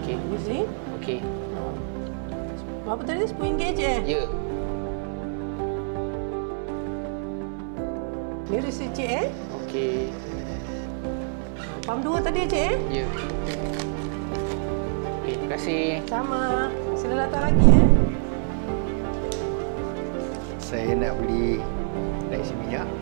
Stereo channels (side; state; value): left; silent; 61 dB below the other